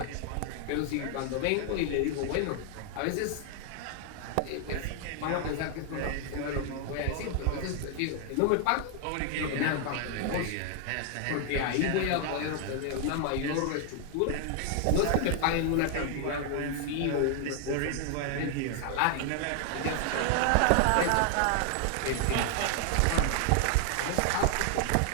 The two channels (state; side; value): different; both; correlation 0.00